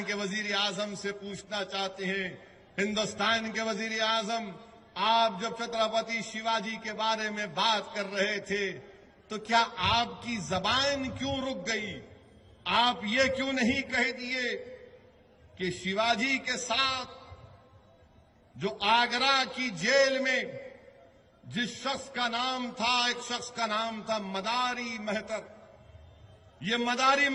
کے وزیر اعظم سے پوچھنا چاہتے ہیں، ہندوستان کے وزیر اعظم، آپ جب چھترپتی شیواجی کے بارے میں بات کر رہے تھے تو کیا آپ کی زبان کیوں رک گئی؟ آپ یہ کیوں نہیں کہہ دیے کہ شیواجی کے ساتھ جو آگرہ کی جیل میں جس شخص کا نام تھا، ایک شخص کا نام تھا مداری مہتر، یہ مداری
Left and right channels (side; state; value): both; identical; correlation 1.00